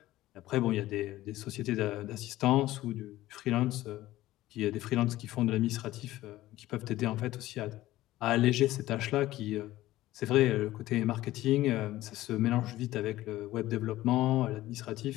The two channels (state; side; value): quieter; right; 15.9 dB